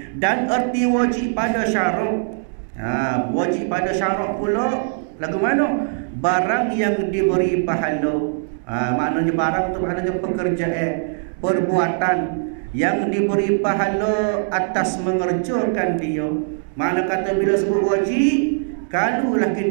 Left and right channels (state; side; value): silent; left; digital silence